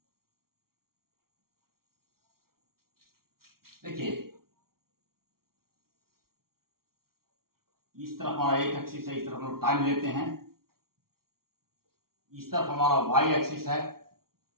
देखिए इस तरफ हमारा एक एक्सिस है, इस तरफ हम लोग टाइम लेते हैं, इस तरफ हमारा वाई एक्सिस है,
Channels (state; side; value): late; left; 0.93 ms